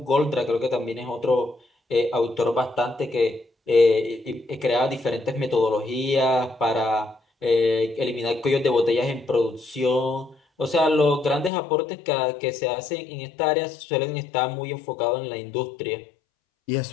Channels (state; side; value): drops out; right; at 11.5 s